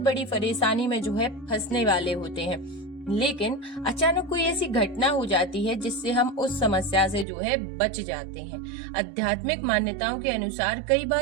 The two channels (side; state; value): left; drops out; at 7.2 s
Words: परेशानी में जो है फंसने वाले होते हैं, लेकिन अचानक कोई ऐसी घटना हो जाती है जिससे हम उस समस्या से जो है बच जाते हैं। आध्यात्मिक मान्यताओं के अनुसार कई